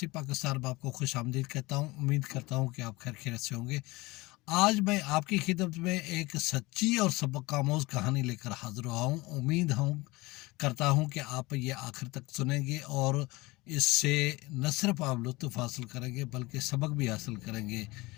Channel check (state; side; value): quieter; right; 22.0 dB